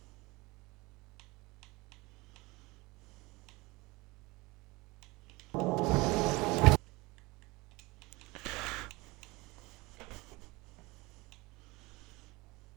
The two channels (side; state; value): left; quieter; 23.1 dB